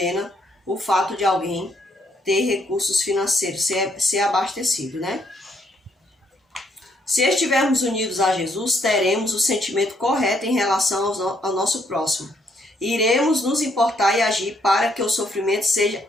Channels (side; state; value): both; normal; correlation 0.71